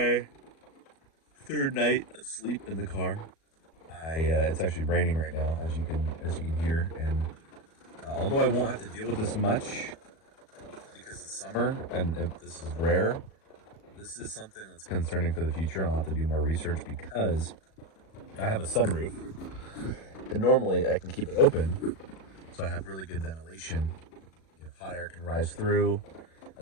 third night of sleep in the car. It's actually raining right now, as you can hear, and although I won't have to deal with this much because it's summer and if this is rare, this is something that's concerning for the future. I'll have to do more research because I have a sunroof, and normally I can keep it open. So I have really good ventilation. Hot air can rise through,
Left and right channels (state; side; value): late; right; 37 ms